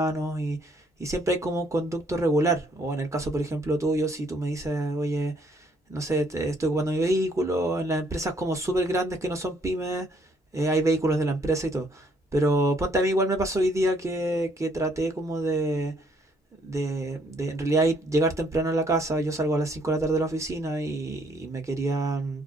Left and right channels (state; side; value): normal; both; correlation 0.67